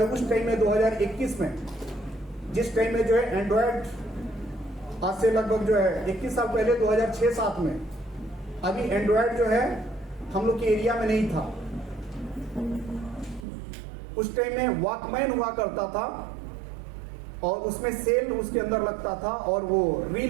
उस टाइम में 2021 में, जिस टाइम में जो है एंड्रॉयड, आज से लगभग जो है 21 साल पहले 2006-07 में, अभी एंड्रॉयड जो है हम लोग के एरिया में नहीं था। उस टाइम में वॉकमैन हुआ करता था और उसमें सेल उसके अंदर लगता था और वो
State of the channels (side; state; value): left; drops out; at 13.5 s